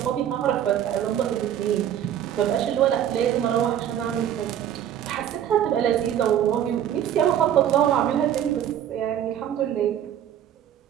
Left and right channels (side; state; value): left; quieter; 10.4 dB